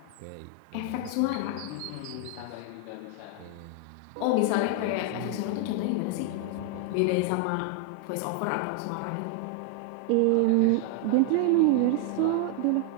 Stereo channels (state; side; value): different; both; correlation 0.00